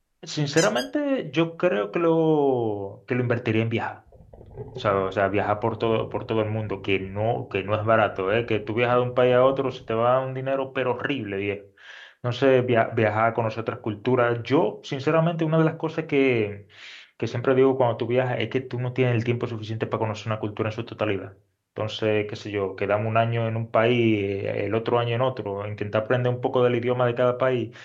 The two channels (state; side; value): identical; both; correlation 1.00